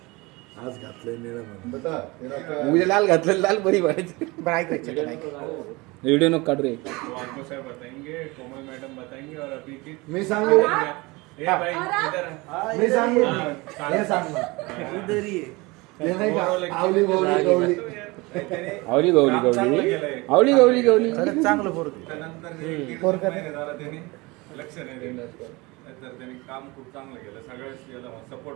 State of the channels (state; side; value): quieter; left; 24.0 dB